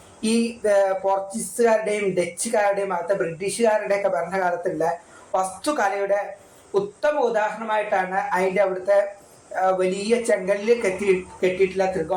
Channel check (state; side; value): identical; both; correlation 1.00